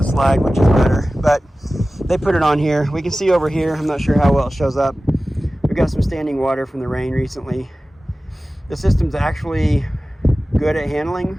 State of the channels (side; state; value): both; normal; correlation 0.96